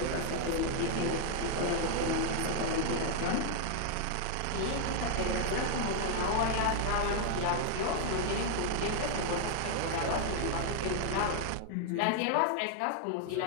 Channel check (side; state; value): both; different; correlation 0.00